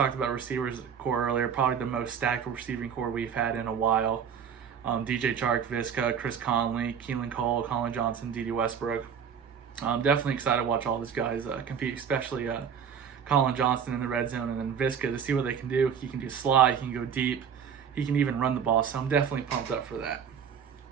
about receivers core earlier. Probably the most stacked receiving core we've had in a while. DJ Chark, Viska, Chris Conley, Keelan Cole, Colin Johnson, Dede Westbrook. I'm definitely excited to watch all these guys compete, especially Colin Johnson in the red zone, and then Viska, to see what they can do. He can do slide, he can go deep, he can even run the ball, so I'm definitely pumped up for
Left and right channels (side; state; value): left; quieter; 7.6 dB